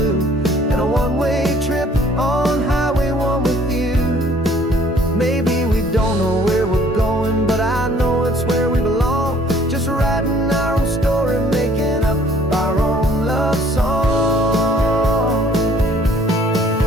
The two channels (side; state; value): both; normal; correlation 0.58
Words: and a one-way trip on Highway 1 with you. Maybe we don't know where we're going, but I know it's where we belong. Just writing our own story, making up our own love song.